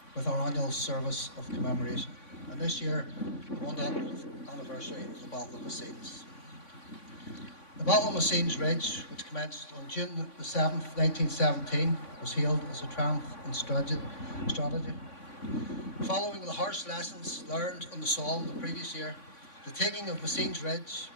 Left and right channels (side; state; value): right; late; 3.5 ms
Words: with our annual service of commemoration. And this year, the 100th anniversary of the Battle of Messines. The Battle of Messines Ridge, which commenced on June the 7th, 1917, was hailed as a triumph in strategy. Following the harsh lessons learned on the Somme the previous year, the taking of Messines Ridge